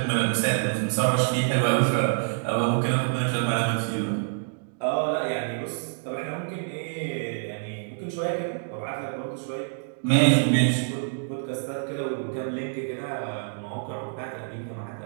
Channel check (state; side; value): silent; left; digital silence